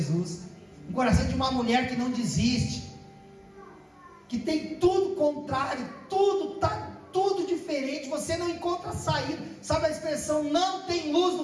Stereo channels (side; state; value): both; identical; correlation 1.00